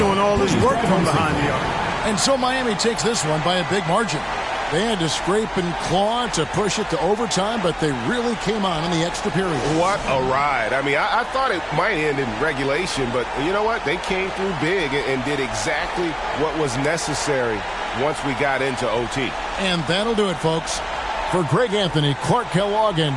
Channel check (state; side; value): identical; both; correlation 1.00